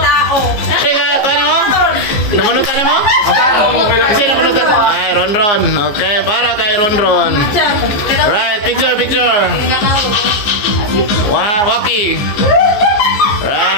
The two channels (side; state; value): right; late; 14 ms